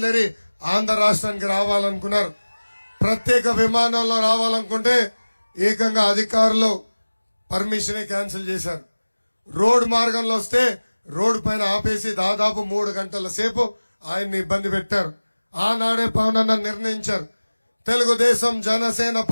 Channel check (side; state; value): both; inverted; correlation -1.00